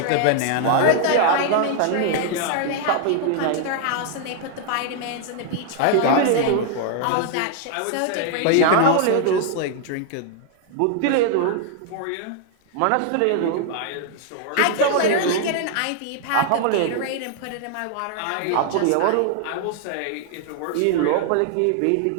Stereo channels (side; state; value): both; different; correlation 0.00